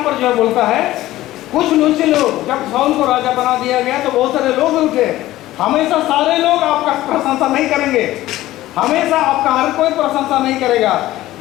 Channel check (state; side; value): quieter; right; 15.7 dB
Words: पर जो बोलता है कुछ नीचे लोग, जब साउल को राजा बना दिया गया तो बहुत सारे लोग उठे। हमेशा सारे लोग आपका प्रशंसा नहीं करेंगे, हमेशा आपका हर कोई प्रशंसा नहीं करेगा।